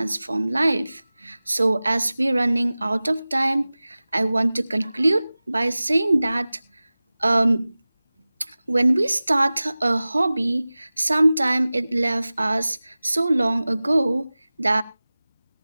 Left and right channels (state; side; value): inverted; both; correlation -0.98